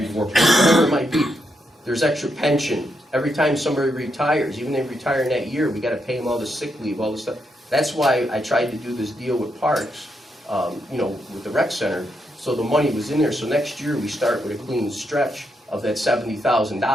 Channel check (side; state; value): both; normal; correlation 0.81